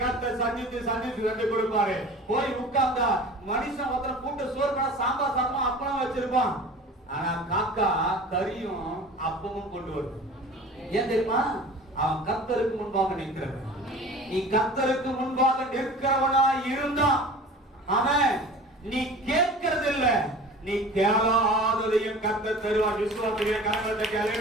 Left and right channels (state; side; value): normal; both; correlation 0.40